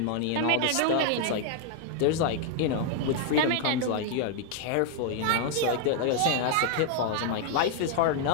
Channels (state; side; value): different; both; correlation 0.00